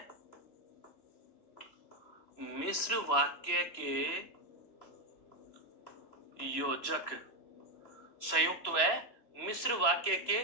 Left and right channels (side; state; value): right; late; 3.0 ms